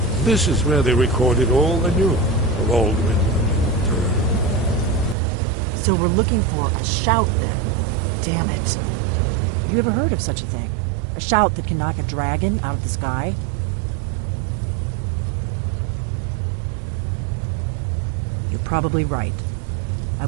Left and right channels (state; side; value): drops out; left; at 5.2 s